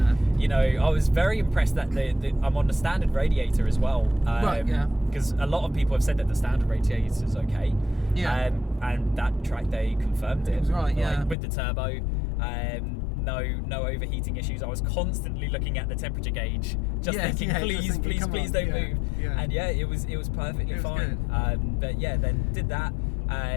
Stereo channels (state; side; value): drops out; right; at 11.4 s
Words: was very impressed that I'm on the standard radiator as well. Because a lot of people have said that the standard radiator is okay. And that track day confirmed it. It was right. With the turbo. No overheating issues. I was constantly looking at the temperature gauge, just thinking, please don't move. And it was perfectly fine. Then did that,